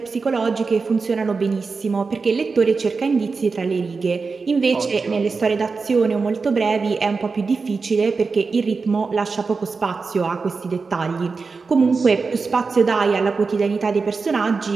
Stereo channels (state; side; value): quieter; left; 4.5 dB